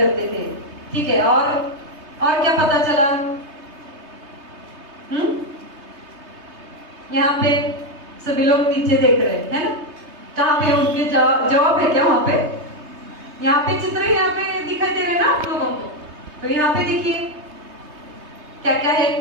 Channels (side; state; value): left; late; 3.3 ms